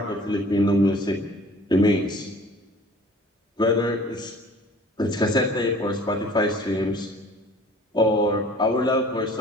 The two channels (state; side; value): normal; both; correlation 0.49